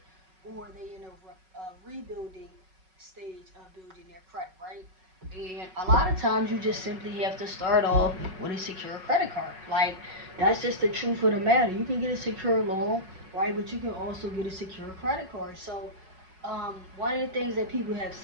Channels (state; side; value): late; left; 5.4 ms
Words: or they in a rebuilding stage of building their credit, right? And a lot of times you just simply have to start off with a secure credit card. Like, that's just the truth of the matter. You can get a secure loan, right? But you can also get a secure credit card. So, one of the things that people have